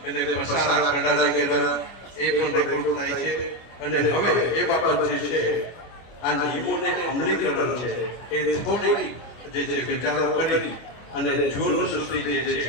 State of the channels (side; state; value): right; late; 25 ms